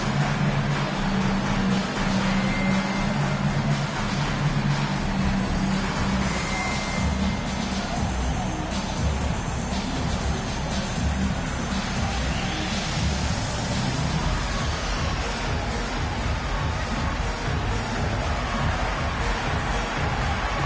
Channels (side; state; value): both; identical; correlation 1.00